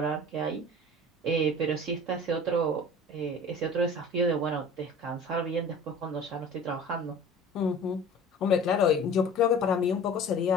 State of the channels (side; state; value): both; normal; correlation 0.42